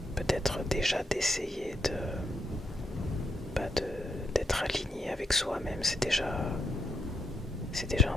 peut-être déjà d'essayer d'être aligné avec soi-même, c'est déjà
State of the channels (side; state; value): both; normal; correlation 0.79